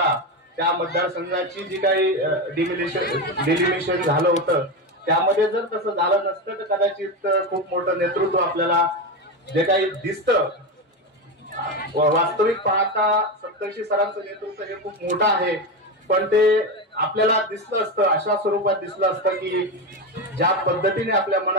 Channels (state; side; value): normal; both; correlation 0.15